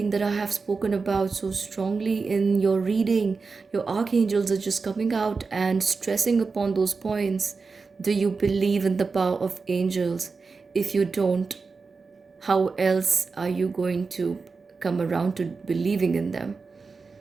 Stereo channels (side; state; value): left; quieter; 4.5 dB